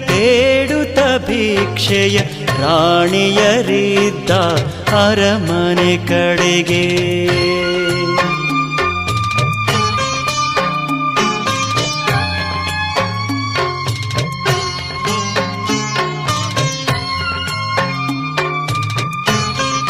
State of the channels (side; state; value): both; identical; correlation 1.00